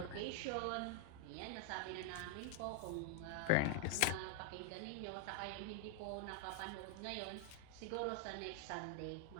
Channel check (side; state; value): both; different; correlation 0.00